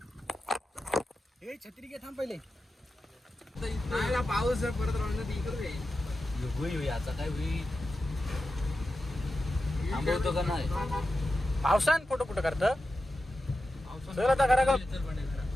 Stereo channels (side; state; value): both; normal; correlation 0.91